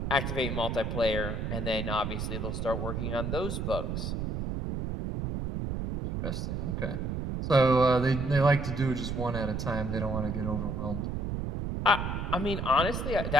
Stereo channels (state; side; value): noise; right; rumble, 3 dB below the sound